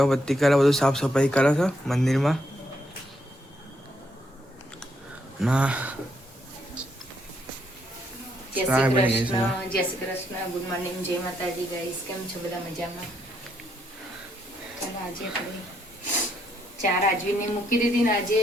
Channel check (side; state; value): both; normal; correlation 0.75